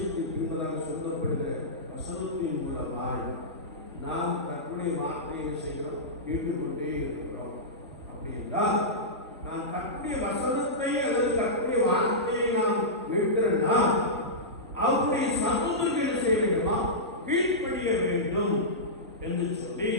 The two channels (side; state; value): both; normal; correlation -0.15